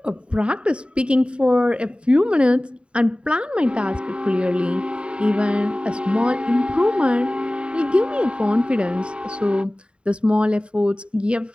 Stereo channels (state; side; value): late; left; 0.055 ms